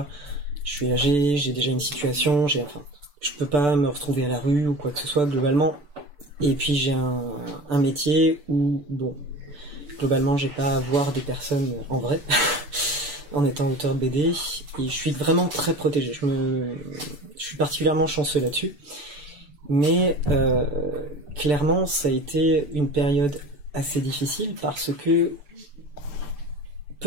je suis âgé, j'ai déjà une situation, je peux pas me retrouver à la rue ou quoi que ce soit globalement, et puis j'ai un métier où, bon, globalement, j'ai pas à voir des personnes en vrai, en étant auteur de BD, et je suis vraiment très protégé, je suis particulièrement chanceux là-dessus, mais clairement, ça a été une période assez difficile parce que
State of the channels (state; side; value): late; left; 6.8 ms